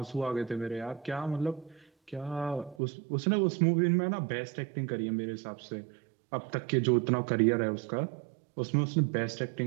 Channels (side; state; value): left; drops out; at 2.8 s